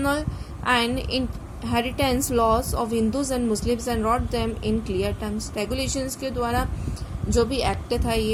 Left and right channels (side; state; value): both; identical; correlation 1.00